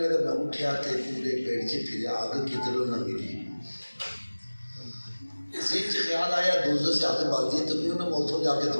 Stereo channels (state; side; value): inverted; both; correlation -1.00